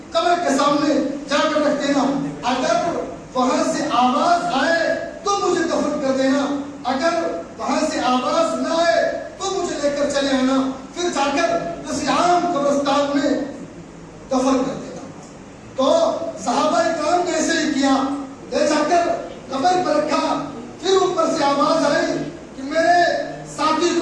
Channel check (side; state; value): both; identical; correlation 1.00